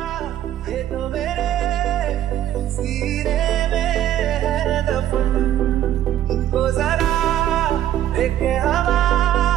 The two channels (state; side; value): quieter; left; 11.9 dB